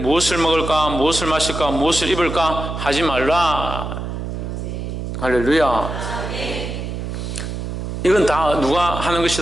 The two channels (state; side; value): noise; right; hum, 5 dB below the sound